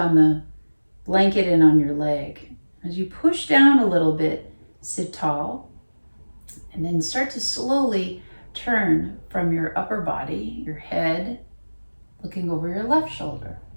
the blanket and on your leg. As you push down a little bit, sit tall, and then start to slowly turn from your upper body, your head, looking over your left shoulder.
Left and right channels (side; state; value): both; inverted; correlation -1.00